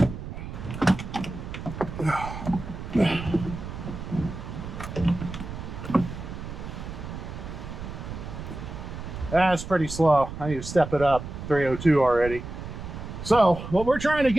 That's pretty slow. I need to step it up. 302 already. So what we're trying to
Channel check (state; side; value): noise; right; rumble, 9 dB below the sound